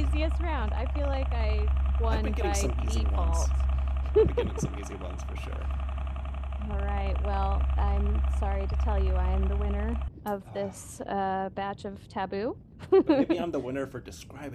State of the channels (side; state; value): both; identical; correlation 1.00